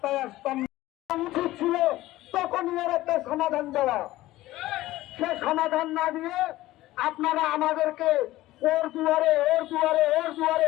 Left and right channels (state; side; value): quieter; right; 16.6 dB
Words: আসতাম না। উচিত ছিল তখনই এর একটা সমাধান দেওয়া। সে সমাধান না দিয়ে আপনারা আমাদেরকে ওর দুয়ারে